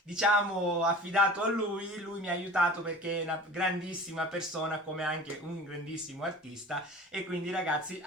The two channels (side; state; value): both; normal; correlation 0.41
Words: diciamo, affidato a lui. Lui mi ha aiutato perché è una grandissima persona, come anche un grandissimo artista. E quindi, ragazzi,